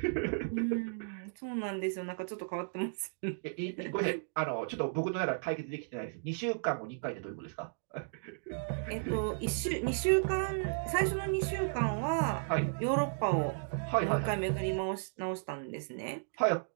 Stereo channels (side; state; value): left; silent; digital silence